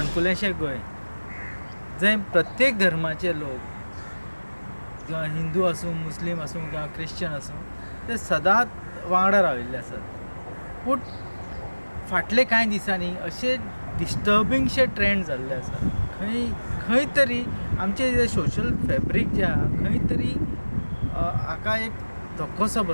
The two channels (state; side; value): inverted; both; correlation -1.00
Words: संकुलेंशें गोंय जंय प्रत्येक धर्माचे लोक किंवा हिंदू आसूं मुस्लीम आसूं किंवा क्रिश्चन आसूं ते सदांच वांगडा राविल्ले आसात. पूण फाटले कांय दिसांनी अशे डिस्टर्बिंगशे ट्रेंड जाल्ले आसात. खंय तरी आमचे जे सोशल फॅब्रीक जे आहा खंय तरी हाका एक धक्कोसो